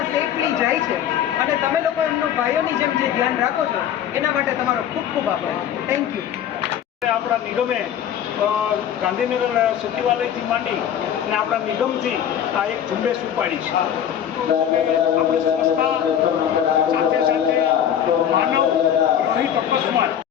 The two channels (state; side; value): quieter; right; 9.6 dB